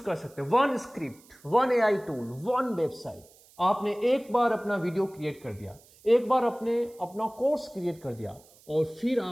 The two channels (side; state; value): right; noise; hiss, 27 dB below the sound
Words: कर सकते हैं। 1 स्क्रिप्ट, 1 AI टूल, 1 वेबसाइट। आपने एक बार अपना वीडियो क्रिएट कर दिया, एक बार अपना कोर्स क्रिएट कर दिया और फिर